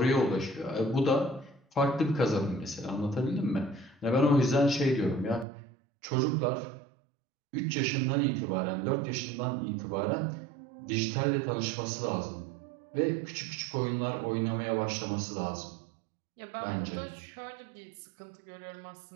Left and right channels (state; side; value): drops out; left; at 5.5 s